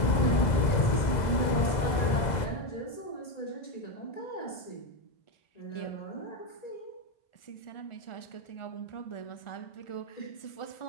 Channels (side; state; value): right; late; 2.0 ms